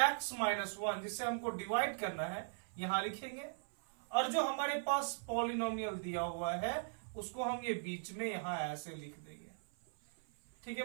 x माइनस 1 जिससे हमको डिवाइड करना है यहां लिखेंगे और जो हमारे पास पॉलिनोमियल दिया हुआ है उसको हम ये बीच में यहां ऐसे लिख देंगे। ठीक है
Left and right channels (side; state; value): left; silent; 52 dB below the other